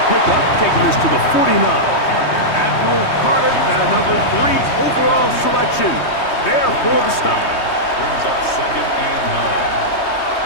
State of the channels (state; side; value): late; right; 3.2 ms